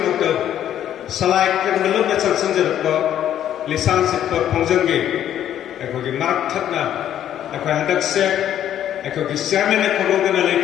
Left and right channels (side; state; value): right; quieter; 10.8 dB